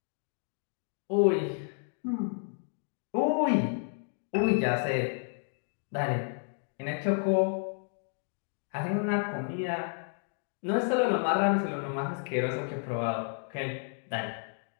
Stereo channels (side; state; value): right; silent; 57 dB below the other